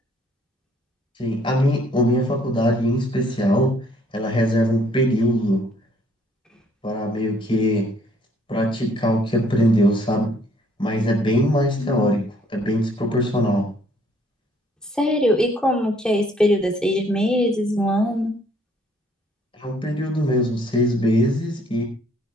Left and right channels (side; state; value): both; normal; correlation 0.63